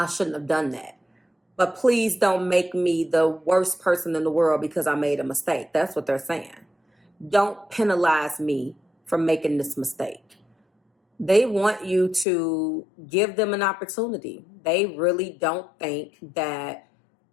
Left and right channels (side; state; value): right; drops out; at 12.2 s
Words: shouldn't have done that. But please don't make me the worst person in the world because I made a mistake. That's what they're saying. Don't penalize me for making this mistake. They want you to give them an opportunity. They really don't think that,